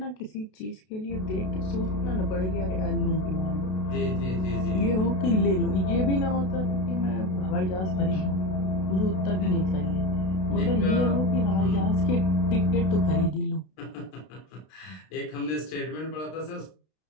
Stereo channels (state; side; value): late; right; 32 ms